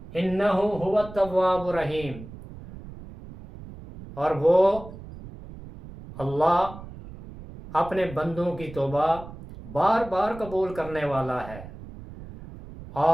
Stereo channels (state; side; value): noise; right; rumble, 15 dB below the sound